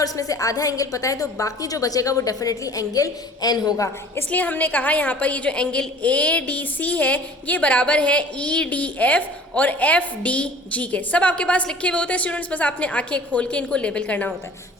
इसमें से आधा एंगल पता है, तो बाकी जो बचेगा वो डेफिनेटली एंगल N होगा। इसलिए हमने कहा यहाँ पर ये जो एंगल ADC है ये बराबर है EDF और FDG के। सब आपके पास लिखे हुए होते हैं स्टूडेंट्स, बस आपने आंखें खोल के इनको लेबल करना होता है।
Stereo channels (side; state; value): both; normal; correlation 0.47